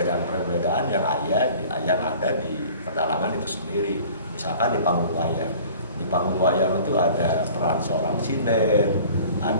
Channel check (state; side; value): inverted; both; correlation -0.47